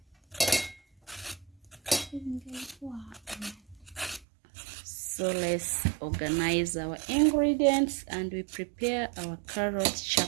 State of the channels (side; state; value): left; drops out; at 4.2 s